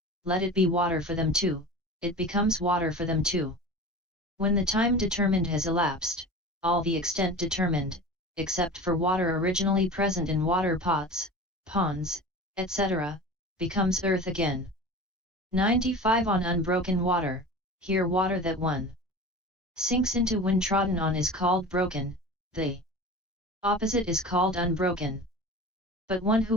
let it be water for them too, it becomes water for them too. When the time determined has elapsed, all the extent determined, except for water originally present in water pots, ponds, etc., becomes earth again. 95 On unbroken water, here water that one sinks into when trodden on is called broken, the opposite is called unbroken. But one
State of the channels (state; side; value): normal; both; correlation 0.35